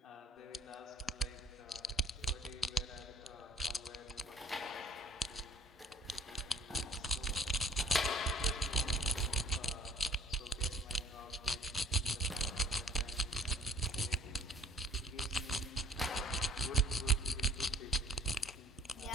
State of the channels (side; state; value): both; normal; correlation 0.55